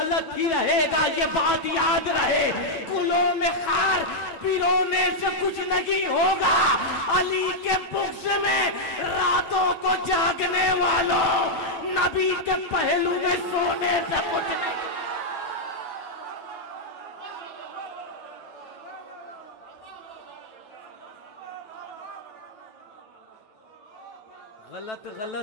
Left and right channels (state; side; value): late; right; 9.2 ms